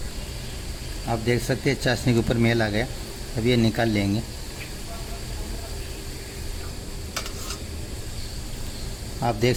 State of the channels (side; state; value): both; identical; correlation 1.00